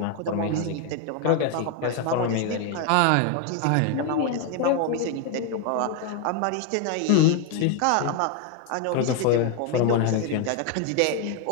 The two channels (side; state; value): both; different; correlation 0.01